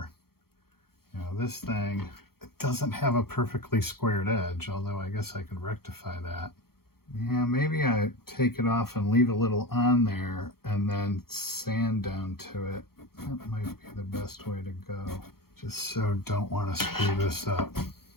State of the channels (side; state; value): right; late; 0.94 ms